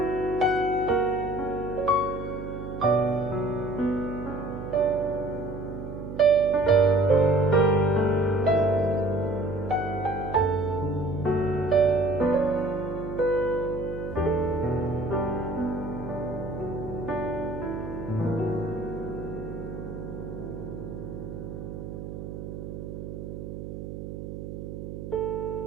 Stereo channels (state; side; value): noise; right; hum, 8 dB below the sound